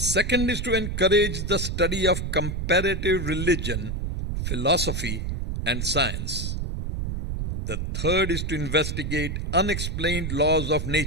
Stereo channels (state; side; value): noise; right; rumble, 3 dB below the sound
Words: second is to encourage the study of comparative religion, philosophy, and science. The third is to investigate unexplained laws of